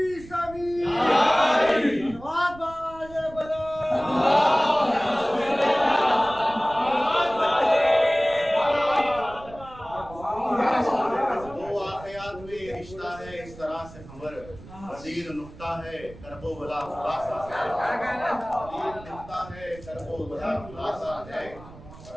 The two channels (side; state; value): right; noise; rumble, 18 dB below the sound